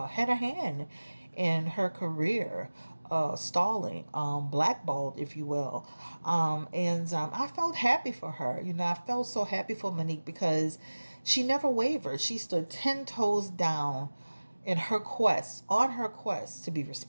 a hand in her career, stalling, blackballed, if you will. And I felt happy for her. I felt so happy for Monique because she never wavered. She stood 10 toes down in her quest, on her quest to be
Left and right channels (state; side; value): inverted; both; correlation -1.00